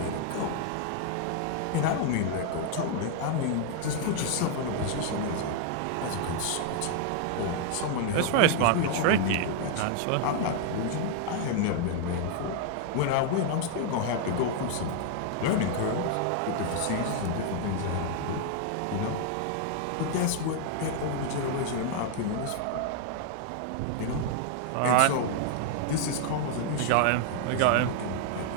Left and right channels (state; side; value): different; both; correlation 0.00